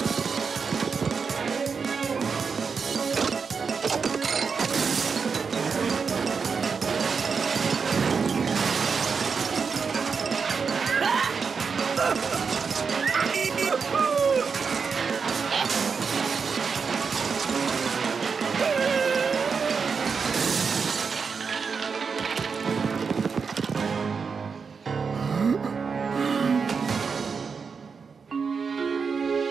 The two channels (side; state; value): left; quieter; 5.5 dB